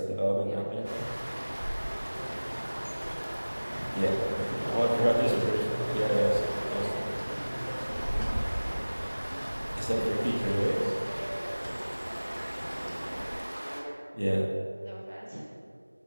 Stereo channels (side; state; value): both; inverted; correlation -1.00